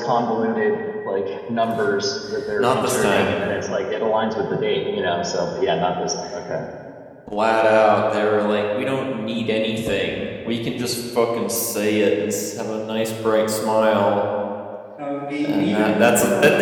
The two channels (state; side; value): identical; both; correlation 1.00